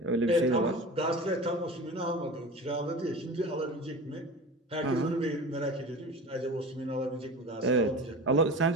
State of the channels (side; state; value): both; normal; correlation 0.34